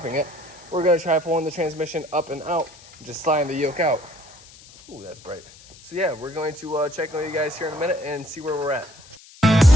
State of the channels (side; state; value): left; noise; hiss, 22 dB below the sound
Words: it. We're gonna try pulling the transmission up and out and just sliding the yoke out. Ooh, that's bright. So yeah, we're going to check on you guys here in a minute and see where we're at.